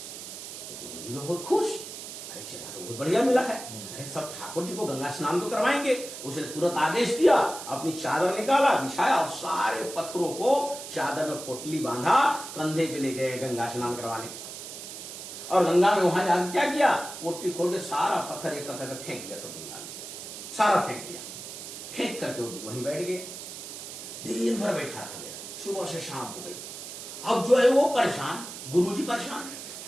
तो गुरु जी में बहुत खुश, अरे चला तो बहुत बढ़िया मिला है, अरे सब ठाकुर जी को गंगा स्नान तो करवाएंगे। उसने तुरंत आदेश दिया, अपनी चादर निकाला, बिछाया और सारे पत्थरों को चादर में पोटली बांधा, कंधे पे ले गए गंगा स्नान करवाने। और गंगा में वहां जाकर क्या किया, पोटली खोल के सारा पत्थर एक करके फेंक दिया, सब गंगा में सारा फेंक दिया। फेंक करके वहीं बैठ गए, दिन भर बैठा रह गया, सुबह से शाम हो गई। अब जो है वो परेशान, गुरुजी परेशान,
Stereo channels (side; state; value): right; noise; hiss, 10 dB below the sound